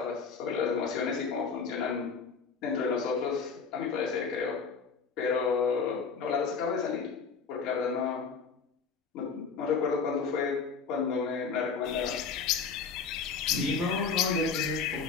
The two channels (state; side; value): quieter; right; 5.4 dB